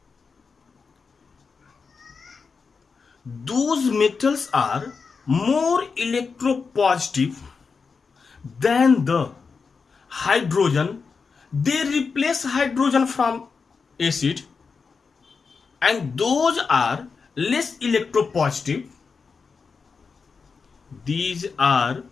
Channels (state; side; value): quieter; right; 5.1 dB